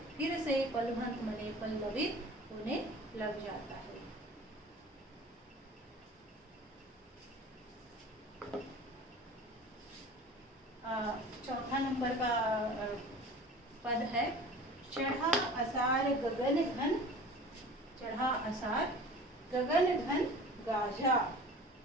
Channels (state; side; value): normal; both; correlation 0.41